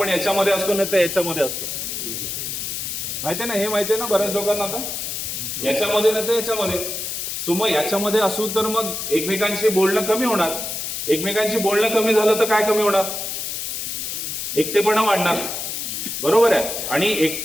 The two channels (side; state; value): left; noise; hiss, 4 dB below the sound